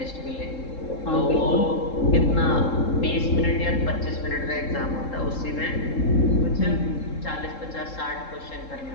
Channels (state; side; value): late; right; 3.7 ms